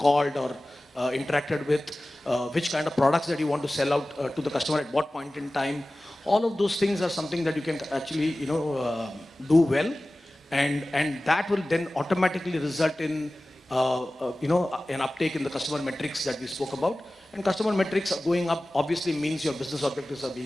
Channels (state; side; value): normal; both; correlation 0.97